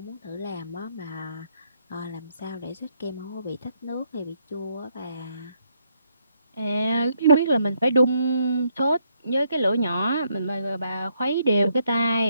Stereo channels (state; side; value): inverted; both; correlation -0.75